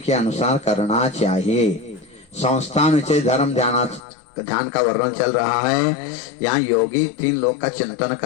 अनुसार करना चाहिए। संस्थान विषय धर्म ध्यान का वर्णन चल रहा है। यहाँ योगी 3 लोक का चिंतन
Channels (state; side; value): drops out; right; at 4.0 s